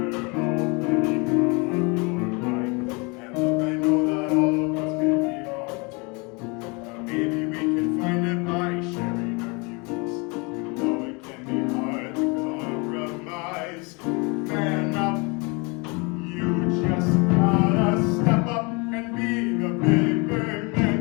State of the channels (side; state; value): right; quieter; 29.7 dB